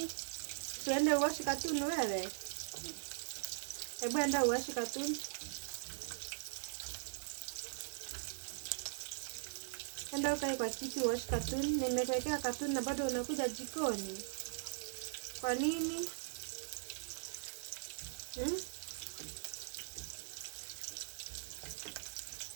tuende uwashi katuni wewe. Hebu enda uwashi katuni. Enda ukae kwa kiti uwashi katuni. Nimekuwekea katuni na bado unakuja jikoni. Kwa nini?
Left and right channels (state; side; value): silent; left; digital silence